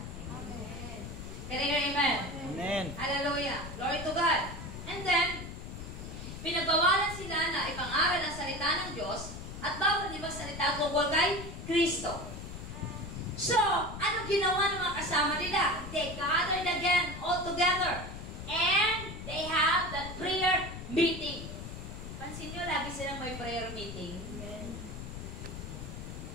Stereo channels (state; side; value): noise; left; rumble, 9 dB below the sound